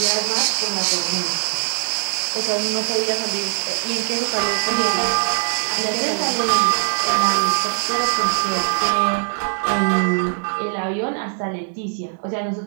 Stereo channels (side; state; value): left; silent; 65 dB below the other